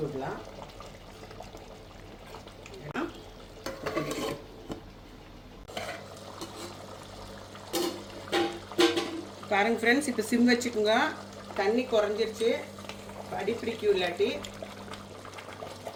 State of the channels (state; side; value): identical; both; correlation 1.00